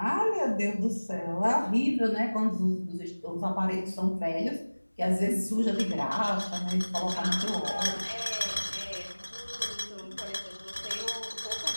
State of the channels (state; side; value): inverted; both; correlation -1.00